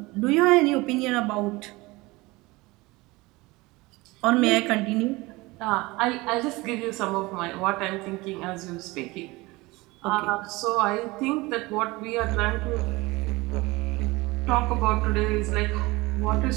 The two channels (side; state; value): left; quieter; 22.2 dB